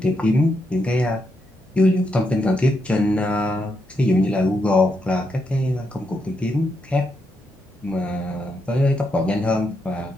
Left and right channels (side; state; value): both; normal; correlation 0.81